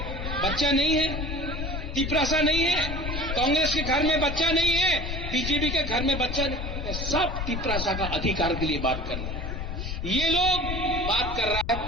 बच्चा नहीं है? तिप्रासा नहीं है? कांग्रेस के घर में बच्चा नहीं है? बीजेपी के घर में बच्चा नहीं? सब तिप्रासा का अधिकार के लिए बात कर रहे हैं। ये लोग बात कर रहा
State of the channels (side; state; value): left; noise; rumble, 4 dB below the sound